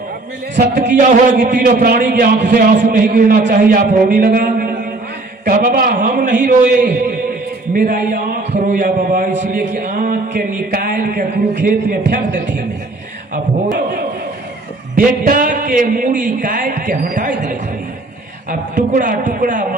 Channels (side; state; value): left; quieter; 3.0 dB